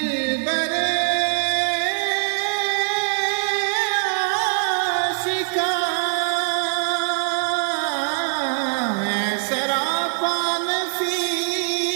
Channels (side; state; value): left; silent; digital silence